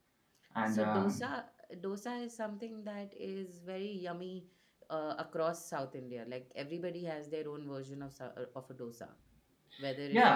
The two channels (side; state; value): both; identical; correlation 1.00